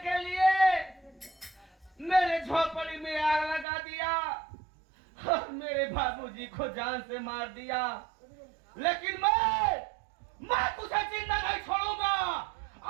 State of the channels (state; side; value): drops out; left; at 3.7 s